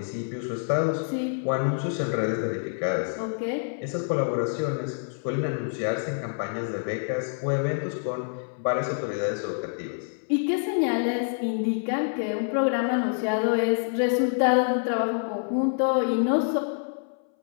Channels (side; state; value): right; silent; 60 dB below the other